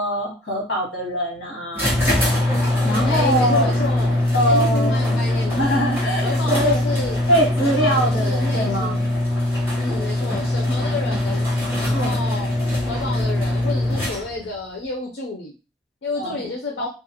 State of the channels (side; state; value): both; normal; correlation 0.52